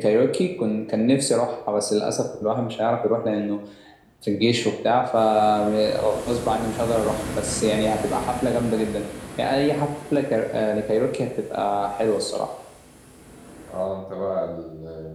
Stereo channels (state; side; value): identical; both; correlation 1.00